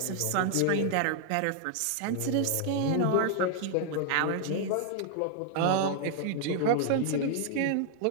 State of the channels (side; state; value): both; different; correlation 0.00